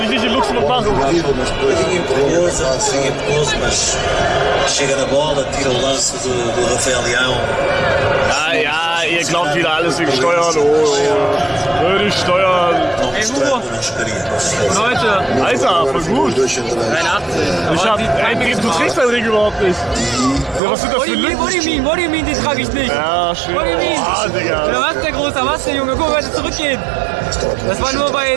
ich nicht in Luxemburg machen. Mas chega na bola, tira o lance do Rafael Leão. Ja, ihr glaubt wieder alles wegen Steuern. Oh, würde ich steuern. não Ey, mostrando Hugo. não chegaria. Leute, Alter, voll gut. 83. Du trägst deinen Ring überhaupt nicht. Ja, was sind das für Lücken? What do you mean, den trage ich nicht. Ja, schön. What do you mean? Ah, Digga. Ja, was, der Großer, was, der Junge? Guck mal, heute zurückgehen. Das war nur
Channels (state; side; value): drops out; left; at 20.6 s